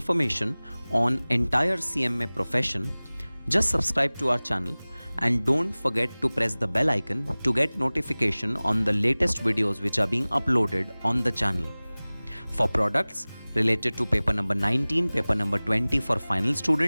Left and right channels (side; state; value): both; inverted; correlation -0.99